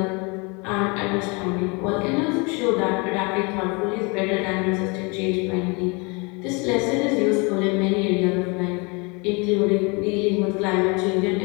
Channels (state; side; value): quieter; right; 29.9 dB